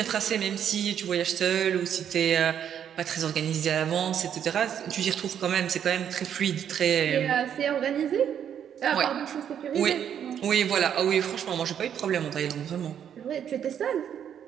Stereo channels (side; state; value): left; quieter; 9.0 dB